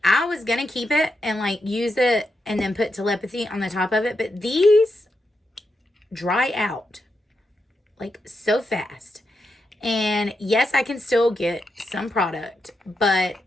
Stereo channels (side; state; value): both; normal; correlation 0.85